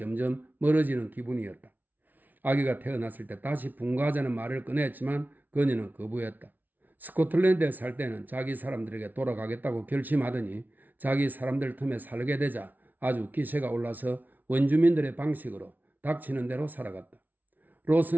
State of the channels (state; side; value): late; left; 0.082 ms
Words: 멀어지는 기분이었다. 아기가 태어났을 때 다시 분가하자는 말을 꺼냈지만 그녀는 거부했다. 스코틀랜드에 살 때는 자기 사람들에게 돌아가겠다고 결심하더니 자기 사람들 틈에 살게 되자 아주 기세가 올라서 원주민들의 방식으로 닥치는 대로 살아갔다.